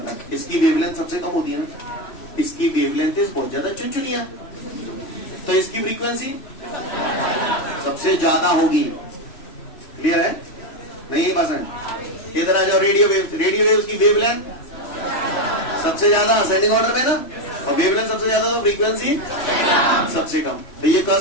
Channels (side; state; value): right; late; 3.0 ms